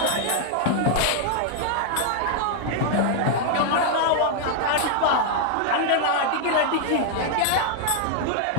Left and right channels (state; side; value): different; both; correlation 0.00